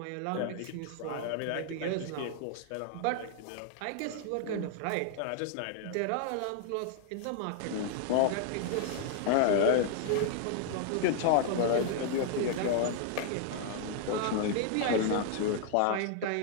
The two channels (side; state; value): both; different; correlation 0.00